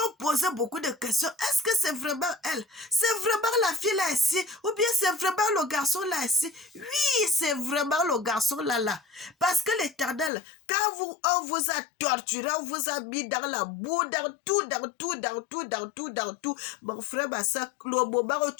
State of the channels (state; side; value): drops out; right; at 10.3 s